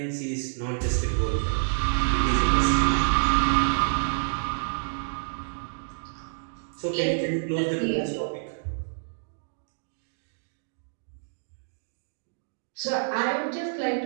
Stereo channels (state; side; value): silent; left; digital silence